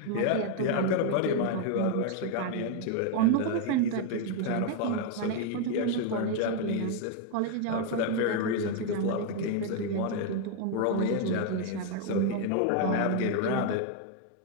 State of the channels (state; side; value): different; both; correlation 0.00